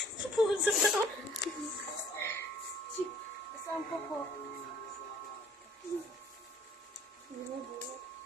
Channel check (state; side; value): normal; both; correlation 0.56